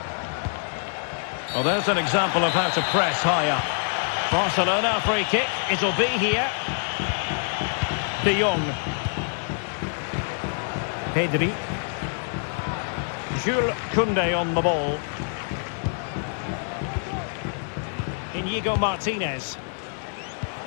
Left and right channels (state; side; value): silent; right; 61 dB below the other